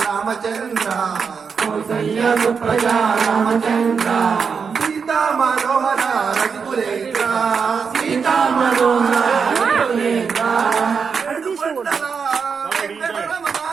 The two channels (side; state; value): left; quieter; 5.9 dB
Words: రామచంద్ర కౌసల్య సుప్రజా రామచంద్ర సీతా మనోహర రఘుకులేంద్ర సీతా మనోహర రఘుకులేంద్ర ఏడుకొండల వెంకటరమణ